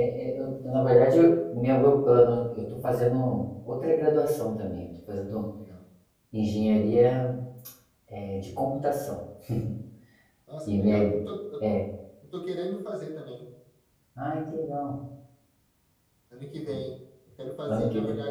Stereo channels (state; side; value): identical; both; correlation 1.00